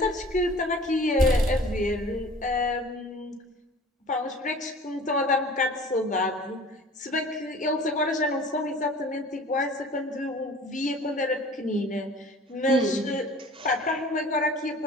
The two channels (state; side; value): normal; both; correlation 0.45